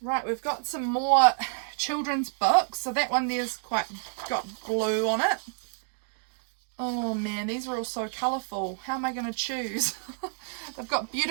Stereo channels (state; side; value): silent; left; digital silence